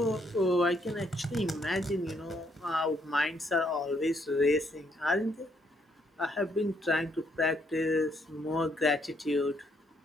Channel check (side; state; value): both; normal; correlation 0.72